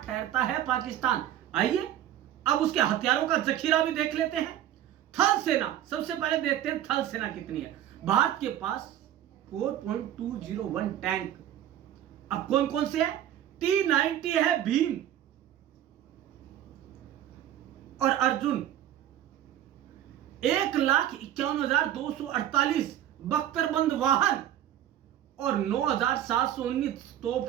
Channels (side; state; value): left; quieter; 11.5 dB